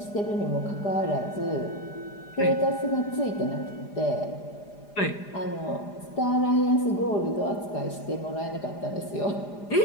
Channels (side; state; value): right; late; 4.9 ms